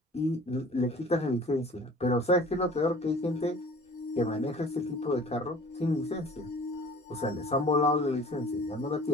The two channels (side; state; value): both; normal; correlation 0.47